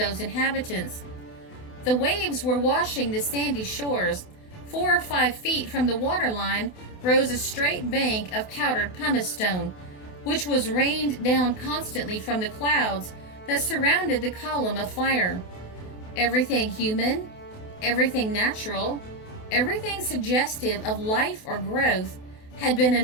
inhabitants. The waves were washing the sandy shores. 4 or 5 feet from the waterline rose a straight bank of powdered pumice stone, which was rained down constantly from the clouds that surrounded the column of fire. Everything human, everything natural, everything suggestive of life or growth had been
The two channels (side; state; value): right; late; 28 ms